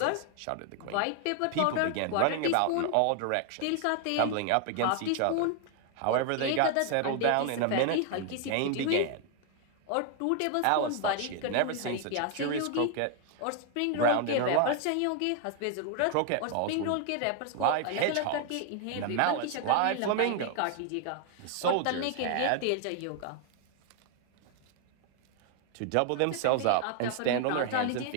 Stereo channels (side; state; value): both; different; correlation 0.00